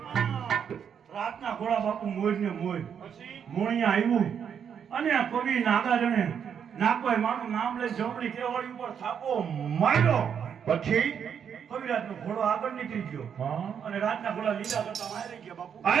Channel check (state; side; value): quieter; left; 7.8 dB